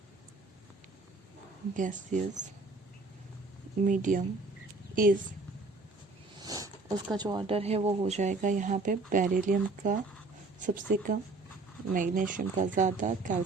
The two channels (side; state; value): left; quieter; 3.5 dB